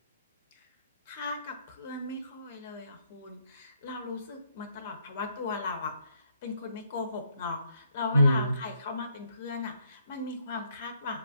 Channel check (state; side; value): inverted; both; correlation -0.70